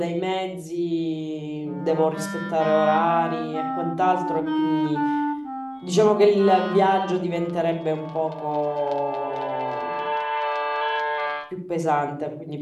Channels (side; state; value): both; identical; correlation 1.00